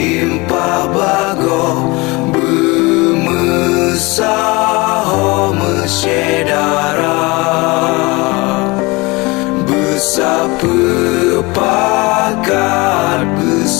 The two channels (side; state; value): right; quieter; 24.6 dB